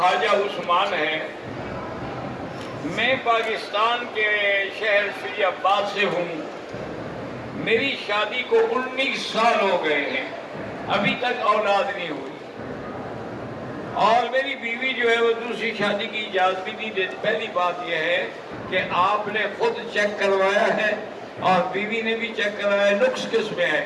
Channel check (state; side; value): identical; both; correlation 1.00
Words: عثمان ہے، میں پاکستان کے شہر فیض آباد سے ہوں، میری شادی کو 19 سال ہو گئے ہیں، ابھی تک اولاد نہیں ہوئی، اور میری بیوی جو ہے وہ دوسری شادی کی اجازت بھی نہیں دیتی۔ پہلی بات یہ ہے کہ آپ نے خود چیک کروایا ہے اور بیوی نے بھی چیک کروایا، نقص کس میں ہے؟